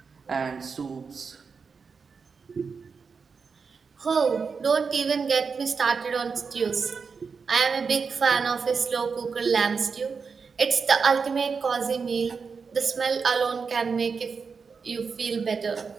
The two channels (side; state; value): left; quieter; 5.4 dB